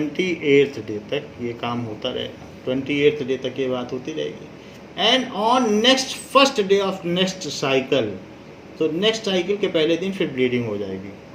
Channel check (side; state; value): both; identical; correlation 1.00